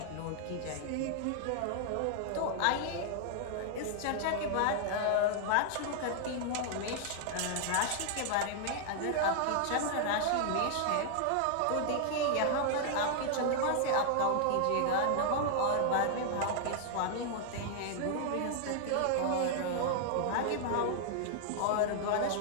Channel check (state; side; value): different; both; correlation 0.00